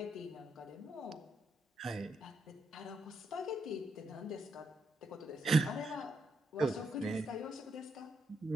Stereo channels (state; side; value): normal; both; correlation 0.79